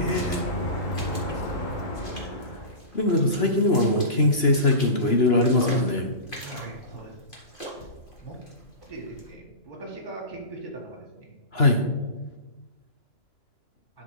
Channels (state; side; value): late; right; 2.9 ms